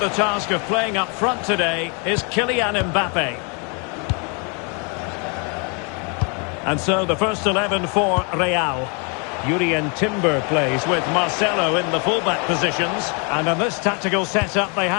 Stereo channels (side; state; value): right; quieter; 35.5 dB